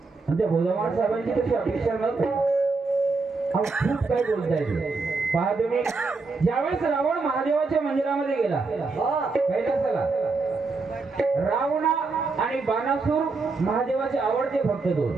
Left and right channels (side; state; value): left; quieter; 4.0 dB